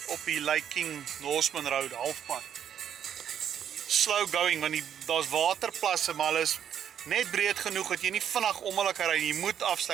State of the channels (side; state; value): left; quieter; 9.2 dB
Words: Op die Lake King Norseman Road halfpad. Slow going, want daar's waterplasse, maar hulle is net breed genoeg dat jy nie vinnig om hulle kan ry. Jy moet